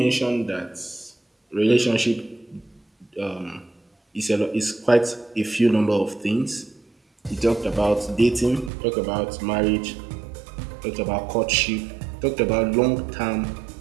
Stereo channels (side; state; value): left; drops out; at 8.7 s